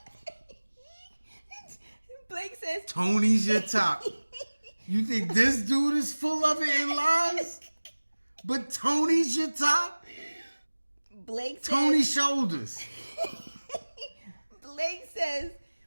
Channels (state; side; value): inverted; both; correlation -1.00